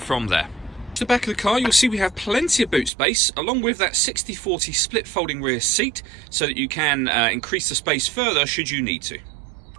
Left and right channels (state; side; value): drops out; left; at 2.9 s